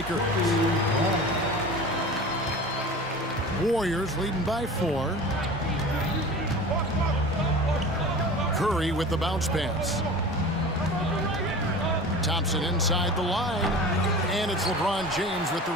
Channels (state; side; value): normal; both; correlation 0.37